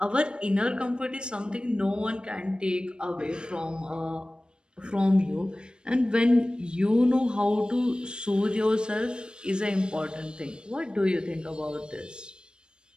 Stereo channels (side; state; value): left; late; 0.052 ms